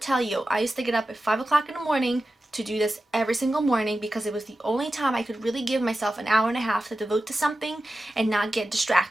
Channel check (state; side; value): normal; both; correlation 0.93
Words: you, I used to get up at 5 o'clock in the morning to do this every single morning because it was the only time I could really give myself an hour and a half to devote to something and not get